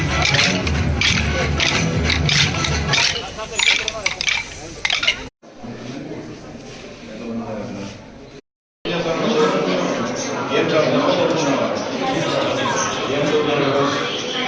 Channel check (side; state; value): both; identical; correlation 1.00